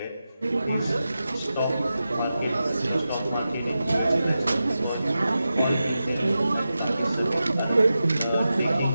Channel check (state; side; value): inverted; both; correlation -0.92